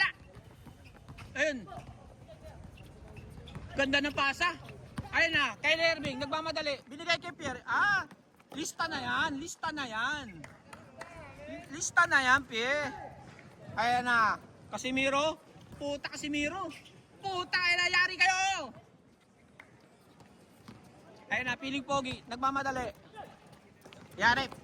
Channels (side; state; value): both; identical; correlation 1.00